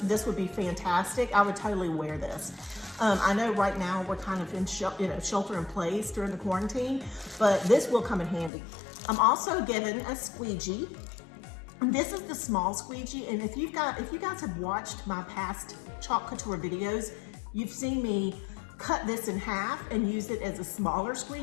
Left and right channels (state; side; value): drops out; right; at 8.5 s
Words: would be fantastic. I would totally wear this. I know right now we're kind of in shelter in place during the quarantine, but this will come in handy. I'm also given a squeegee. This is the small squeegee, and if you guys have watched my past Chalk Couture videos, you've seen me cut this in half and use it as a smaller